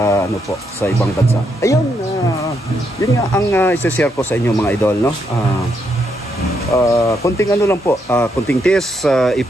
ano po sa ibang bansa. Ayun, yun nga ang i-share ko sa inyo mga idol, no? Konting ano lang po, konting test,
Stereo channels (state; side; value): normal; both; correlation 0.78